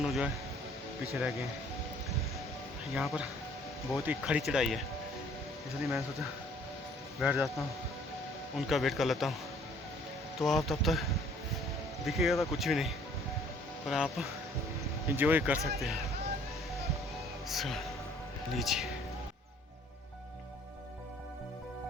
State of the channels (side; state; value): both; normal; correlation 0.58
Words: जो है पीछे रह गए हैं। यहाँ पर बहुत ही खड़ी चढ़ाई है, इसलिए मैंने सोचा बैठ जाता हूँ, उनका वेट कर लेता हूँ। तो आप तब तक दिखेगा तो कुछ भी नहीं, पर आप इंजॉय कर सकते हैं। लीजिए।